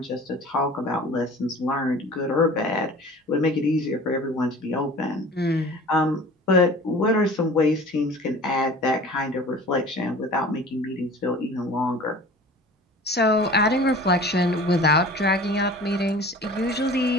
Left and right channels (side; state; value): both; normal; correlation 0.43